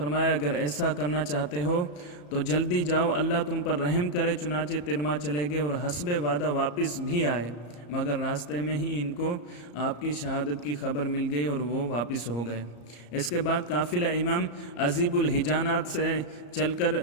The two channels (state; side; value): late; right; 34 ms